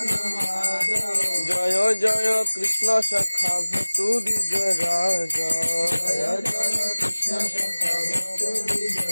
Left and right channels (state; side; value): inverted; both; correlation -1.00